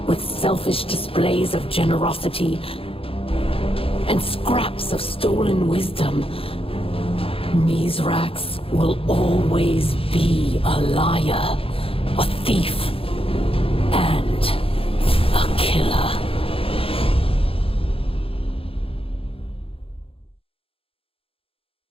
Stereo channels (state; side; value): late; right; 0.27 ms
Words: with selfish displays of generosity and scraps of stolen wisdom, Mizrax will always be a liar, a thief, and a killer.